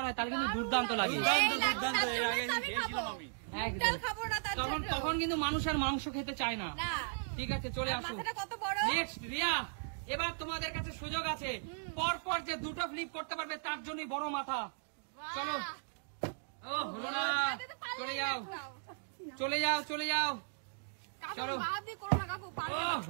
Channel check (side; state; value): left; silent; digital silence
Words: হয় তাহলে কিন্তু দুর্দান্ত লাগে। দুর্দান্ত, এই দুর্দান্ত। তার এর জন্য আগে তো আমি খেয়েছিলাম খাবো। আমি। একদম। ডাল খাবো না তার তখন জন্য। তখন কিন্তু মানুষ আর মাংস খেতে চায় না। না। ঠিক আছে চলে আসো। মাথাটা কত বড়? নেক্সট রিয়া, এবার তোমাদের কাছে সুযোগ আছে। পর পর যে দুটো ফ্লিপ করতে পারবে তার জন্যই বড় মাথা। চলো। ও হলো না, চলে যাও চলে যাও চলে যাও। কাকু চলো। বাদ দিয়ে করো না কাকু। পারবে ও না।